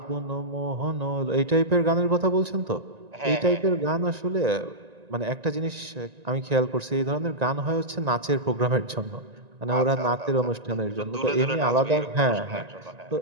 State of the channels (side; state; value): left; late; 1.9 ms